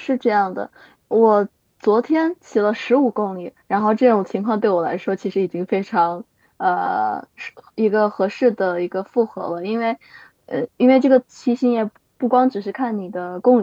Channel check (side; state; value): both; identical; correlation 1.00